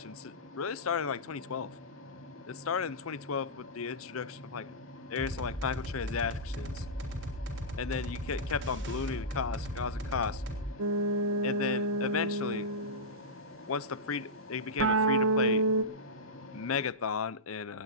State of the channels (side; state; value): both; normal; correlation -0.13